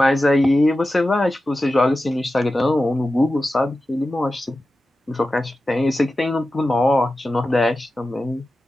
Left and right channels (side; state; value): both; normal; correlation 0.93